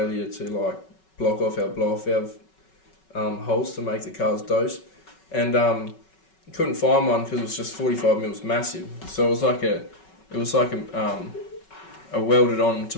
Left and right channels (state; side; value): late; right; 5.3 ms